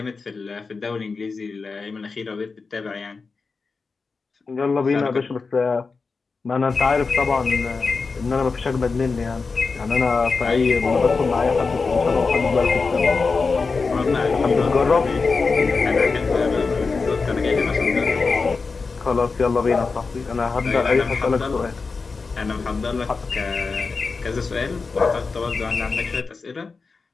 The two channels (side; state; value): right; quieter; 4.5 dB